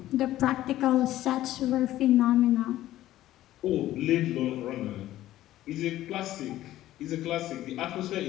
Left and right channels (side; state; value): right; quieter; 14.3 dB